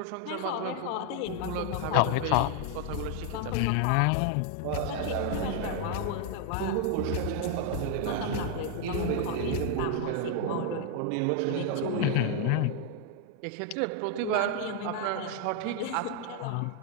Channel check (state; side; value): different; both; correlation 0.00